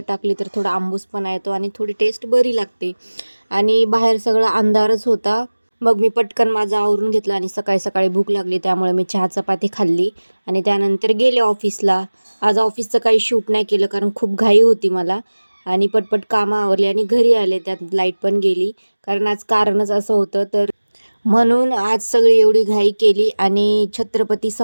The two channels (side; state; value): both; inverted; correlation -1.00